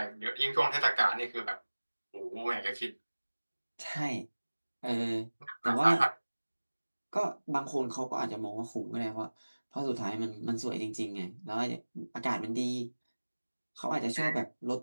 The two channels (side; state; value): both; inverted; correlation -1.00